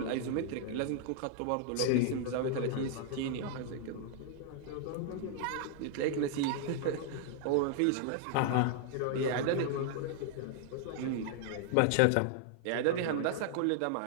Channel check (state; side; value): different; both; correlation 0.00